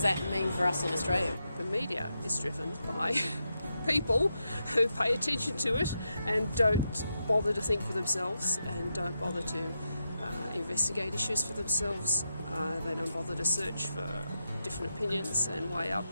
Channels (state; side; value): inverted; both; correlation -0.86